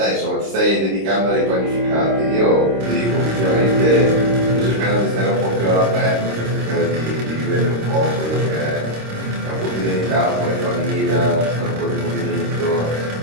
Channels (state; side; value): late; left; 26 ms